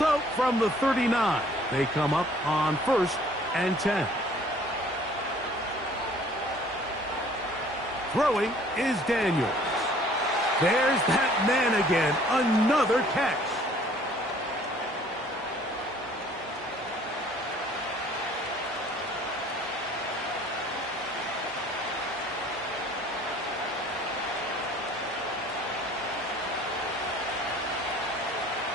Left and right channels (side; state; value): both; normal; correlation 0.55